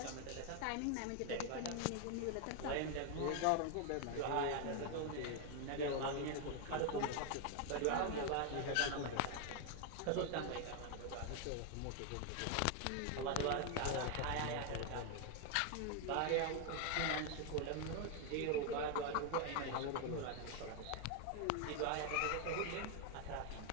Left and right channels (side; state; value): both; different; correlation 0.01